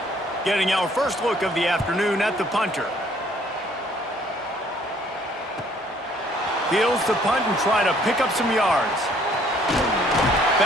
Getting our first look of the afternoon at the punter. Fields to punt and try to pick up some yards.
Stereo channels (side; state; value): both; normal; correlation 0.61